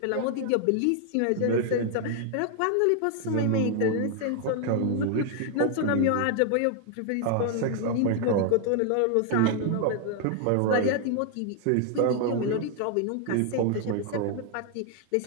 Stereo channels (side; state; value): both; different; correlation 0.00